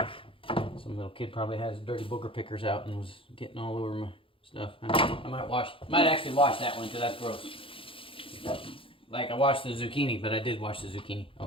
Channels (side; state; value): right; late; 0.26 ms